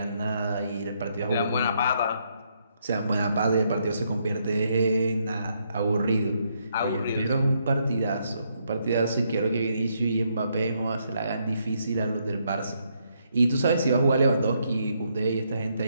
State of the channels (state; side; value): inverted; both; correlation -0.75